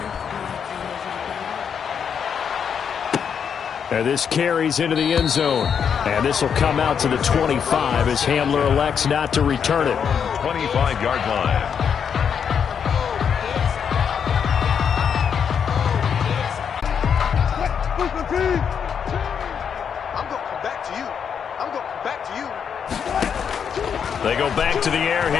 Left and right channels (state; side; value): quieter; right; 7.3 dB